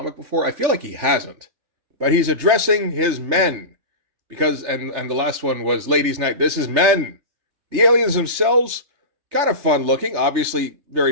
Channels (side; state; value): left; late; 3.3 ms